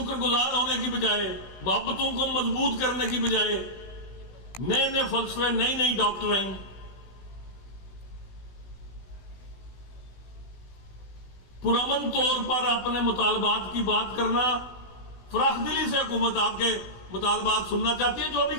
گزار ہونے کی بجائے، محبتوں کو مضبوط کرنے کی بجائے نئے نئے فلسفے، نئی نئی ڈاکٹرائن، پرامن طور پر اپنے مطالبات کی بات کرنا، فراخ دلی سے حکومت آپ کے مطالبات سننا چاہتی ہے. جو بھی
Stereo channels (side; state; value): right; late; 16 ms